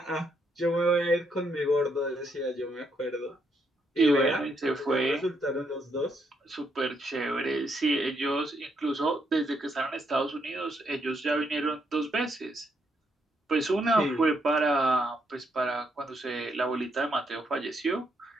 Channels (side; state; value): both; normal; correlation 0.76